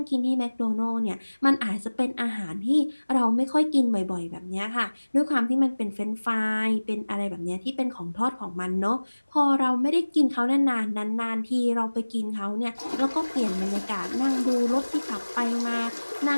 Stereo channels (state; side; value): inverted; both; correlation -1.00